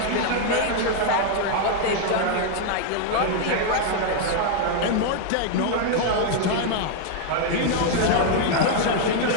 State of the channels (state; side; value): different; both; correlation 0.00